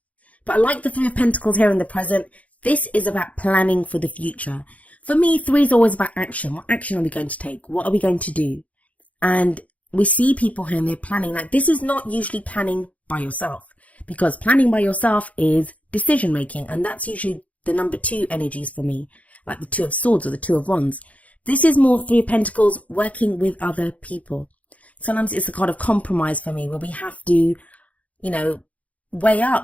But I like the Three of Pentacles here in the present. This is about planning for the future. For me, three is always about action. What action are we going to take? What are we going to do? And we see people here and they're planning. Like, this is not usually planning by yourself, because planning by yourself is decision making. And that's usually the number 2 energies for me, like the Two of Swords or the Two of Wands. This is more Three of Pentacles, working with other people. Sometimes it's a kind of compromise for me, where we have to, weigh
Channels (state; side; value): late; right; 0.068 ms